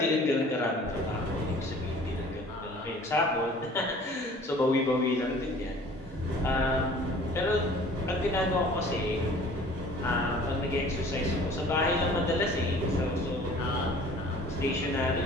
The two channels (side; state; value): both; normal; correlation 0.49